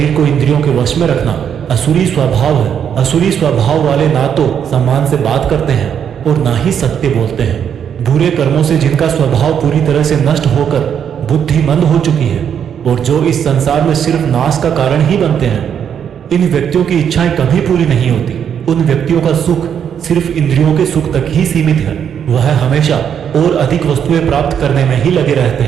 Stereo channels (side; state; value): left; quieter; 8.3 dB